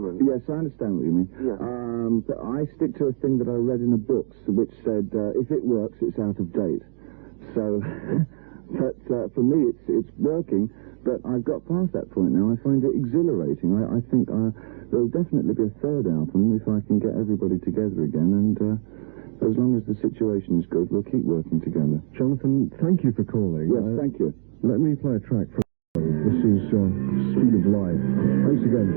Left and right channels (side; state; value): left; silent; digital silence